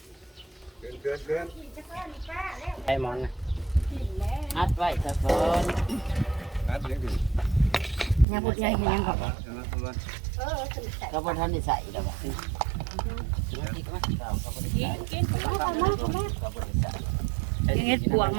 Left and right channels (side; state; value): left; drops out; at 8.2 s